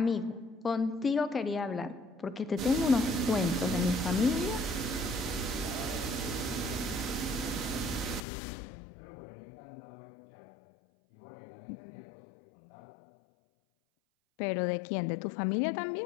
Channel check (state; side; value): drops out; right; at 8.2 s